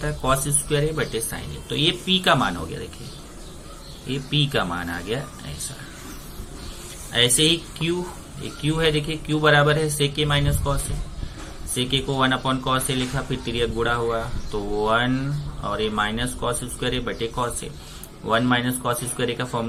है कॉस स्क्वायर ए बटे साइन ए, तो ये पी का मान हो गया, देखिए ये पी का मान आ गया ऐसा। ऐसे ही क्यू, ये क्यू है देखिए क्यू बराबर है सेक ए माइनस कॉस ए, सेक ए को 1 अपॉन कॉस ए लिखा, फिर तिर्यक गुणा हुआ तो 1 और ये माइनस कॉस स्क्वायर ए बटे cos A, 1 minus cos square A का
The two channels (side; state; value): both; identical; correlation 1.00